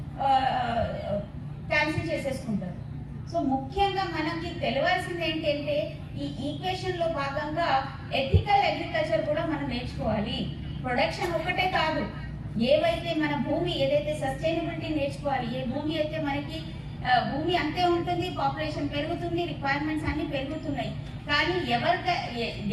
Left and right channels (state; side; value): identical; both; correlation 1.00